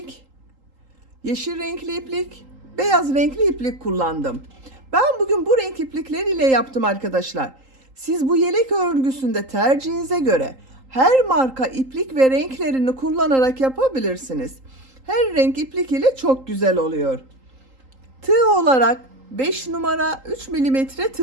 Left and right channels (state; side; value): late; left; 3.8 ms